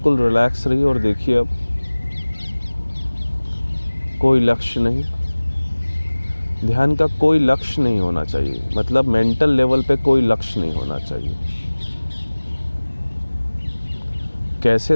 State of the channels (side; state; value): both; inverted; correlation -1.00